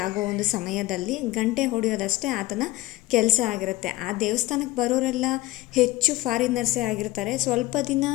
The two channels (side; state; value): right; quieter; 17.8 dB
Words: ಆಗೋ ಒಂದು ಸಮಯದಲ್ಲಿ ಗಂಟೆ ಹೊಡೆಯೋದಷ್ಟೇ ಆತನ ಕೆಲಸ ಆಗಿರುತ್ತೆ. ಆ ದೇವಸ್ಥಾನಕ್ಕೆ ಬರೋರೆಲ್ಲ ಹೆಚ್ಚು ಫಾರಿನರ್ಸೇ ಆಗಿರ್ತಾರೆ. ಸ್ವಲ್ಪ ದಿನ